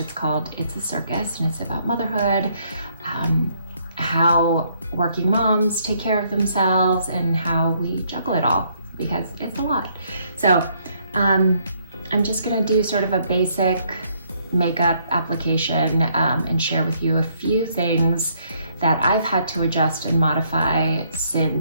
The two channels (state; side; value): inverted; both; correlation -0.69